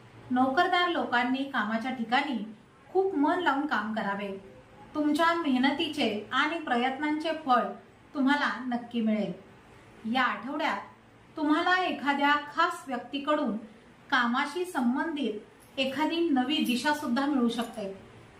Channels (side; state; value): both; identical; correlation 1.00